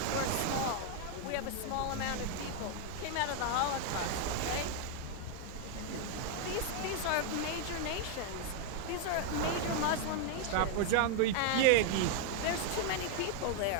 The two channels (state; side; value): different; both; correlation 0.00